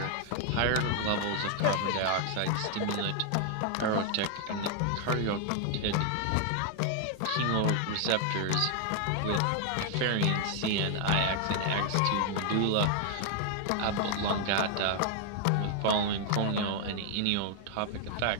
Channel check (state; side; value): different; both; correlation 0.00